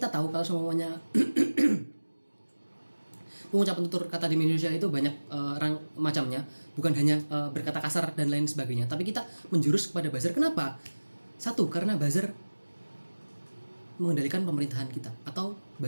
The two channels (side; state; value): both; inverted; correlation -1.00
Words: tahu kalau semuanya pengucapan tutur kata di media sosial itu banyak macamnya, bukan hanya berkata kasar dan lain sebagainya, tapi kita menjurus kepada buzzer. Kenapa? Satu, karena buzzer mengendalikan pemerintahan kita, atau